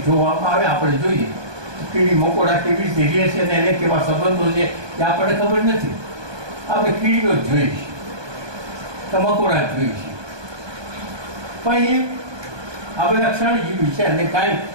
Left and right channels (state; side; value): late; left; 1.2 ms